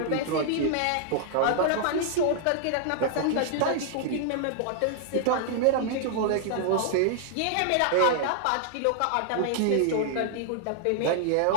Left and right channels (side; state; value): both; different; correlation 0.00